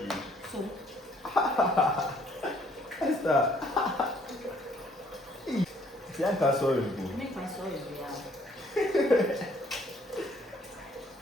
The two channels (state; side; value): normal; both; correlation 0.63